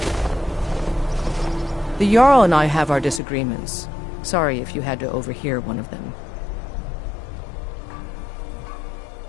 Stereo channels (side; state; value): right; drops out; at 3.2 s